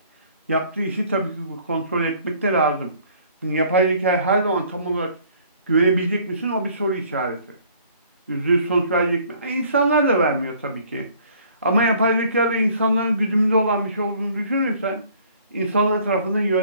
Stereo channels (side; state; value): both; inverted; correlation -0.57